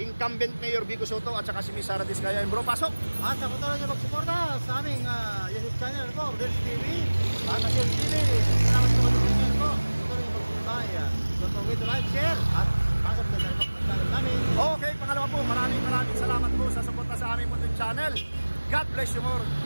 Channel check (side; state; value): both; inverted; correlation -1.00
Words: mayor Biko Soto at saka si Miss Sara Diskaya. Bro, pasok! At sa patuloy niyo magsuporta sa aming YouTube channel po, Rodel's TV. At Rodel's TV, salamat sa channel po. Patuloy niyo magsuporta. Don't forget to like, share, at pasok na sa channel namin. Okay, pangalawa po, maraming salamat po sa suporta sa aming munting channel. God bless you more.